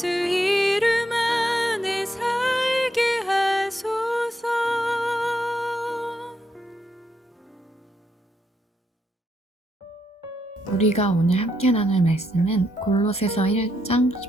이름 안에 살게 하소서. 우리가 오늘 함께 나눌 말씀은 골로새서 1장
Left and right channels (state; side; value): normal; both; correlation 0.78